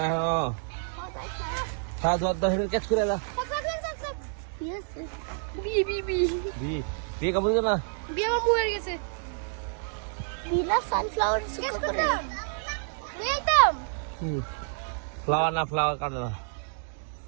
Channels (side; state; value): left; silent; 59 dB below the other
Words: হলো হ্যাঁ দর দর ক্যাচ করে দাও বি বি বি কি কাপড় যাবা বি আমার মুয়ে গেছে বিনা সানফ্লাওয়ার সুকো করে নিতাম ফ্লাওয়ার না ফ্লাওয়ার কাটলো